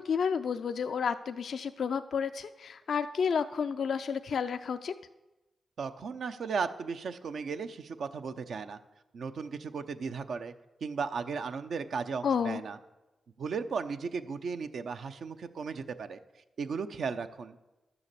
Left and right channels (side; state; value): both; normal; correlation 0.77